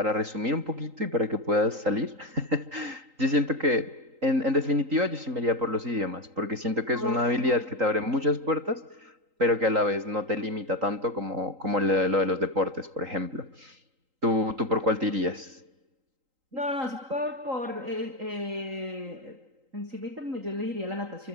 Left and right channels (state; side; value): late; left; 3.8 ms